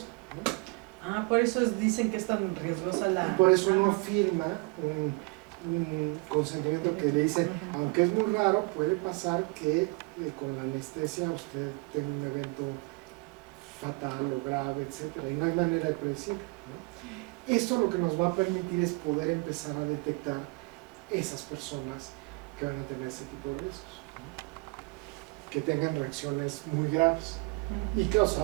¿no? Por eso dicen que es tan riesgosa la... Y por eso uno firma un consentimiento que le dice, aunque es muy raro, puede pasar que con la anestesia usted tenga un evento fatal o grave, etcétera, y no hay manera de predecir, ¿no? Esto lo que nos va a permitir es poder empezar a detectar esas personas que van a tener ese tipo de riesgos, ¿no? Que tengan reacciones muy graves, y claro,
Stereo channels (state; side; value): quieter; left; 27.3 dB